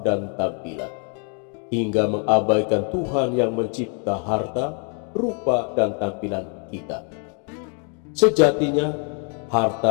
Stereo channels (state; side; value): quieter; right; 39.7 dB